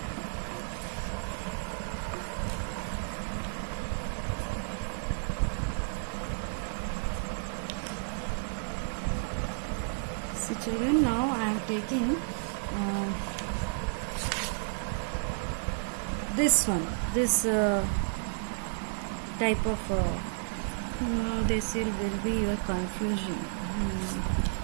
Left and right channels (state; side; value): silent; left; digital silence